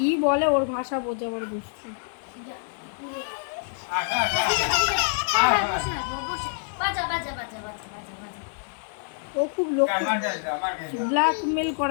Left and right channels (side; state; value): right; silent; digital silence